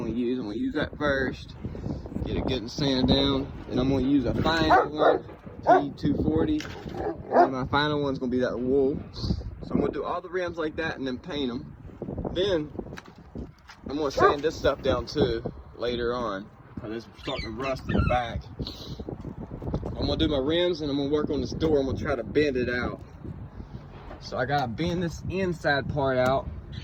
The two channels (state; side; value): identical; both; correlation 1.00